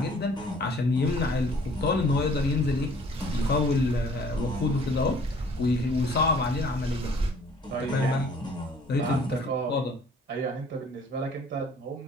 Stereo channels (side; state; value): both; normal; correlation 0.55